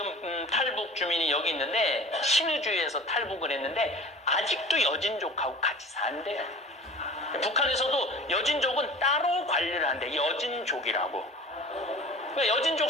탈북 주민이 여기 있는데 신의주에서 탈북을 했는데 아직도 여진족하고 같이 산대요. 북한에서도 여진족은 따로 관리를 한대. 여진족이라고. 그러니까 여진족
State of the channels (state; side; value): normal; both; correlation 0.41